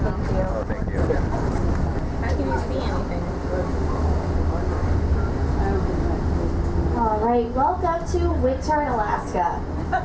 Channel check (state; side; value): identical; both; correlation 1.00